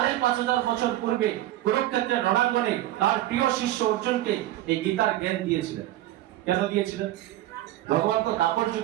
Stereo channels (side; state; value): left; quieter; 14.8 dB